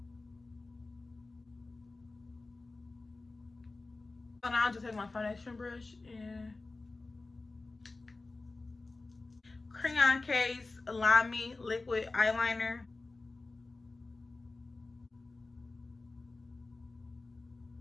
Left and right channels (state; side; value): quieter; right; 3.4 dB